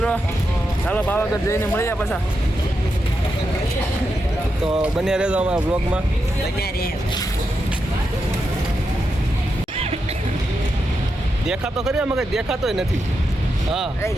ચાલો પાવાગઢ જઈને મળીએ પાછા. તો બન્યા રહેજો અમારા બ્લોગમાં. દેખાતો ખરી અમે કઈ દેખાતોય નથી. હા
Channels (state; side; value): normal; both; correlation 0.86